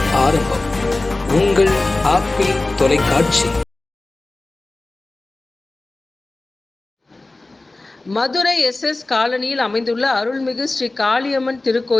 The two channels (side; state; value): right; quieter; 3.0 dB